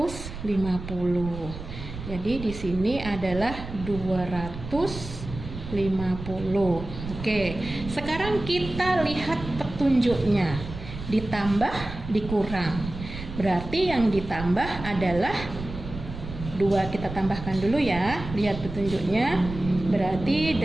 Jadi di sini adalah 250. Oke, sekarang kita lihat petunjuknya. Ditambah, dikurang. Berarti yang ditambah adalah 2, kita tambahkan dulu ya. Lihat petunjuknya. Berarti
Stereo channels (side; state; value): right; noise; rumble, 10 dB below the sound